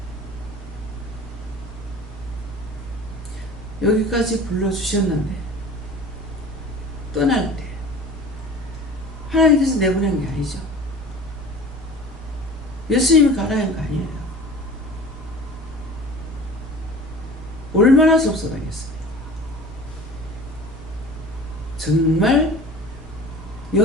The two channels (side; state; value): both; normal; correlation 0.41